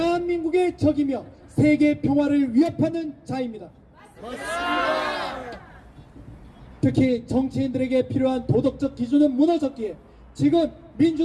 적이며 세계 평화를 위협하는 자입니다. 특히 정치인들에게 필요한 도덕적 기준은 무너졌기에 지금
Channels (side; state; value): both; identical; correlation 1.00